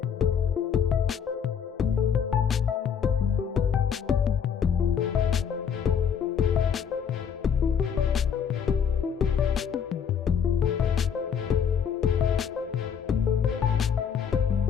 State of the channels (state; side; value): quieter; right; 7.3 dB